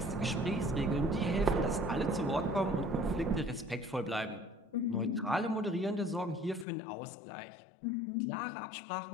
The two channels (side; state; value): right; drops out; at 6.7 s